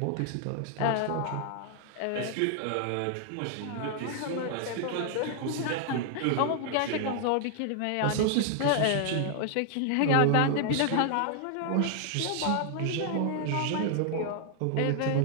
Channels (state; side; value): different; both; correlation 0.00